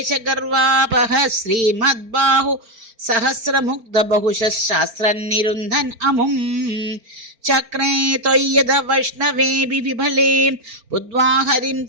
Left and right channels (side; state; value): left; late; 4.4 ms